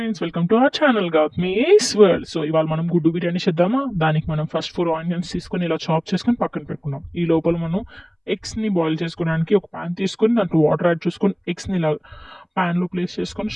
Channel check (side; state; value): both; identical; correlation 1.00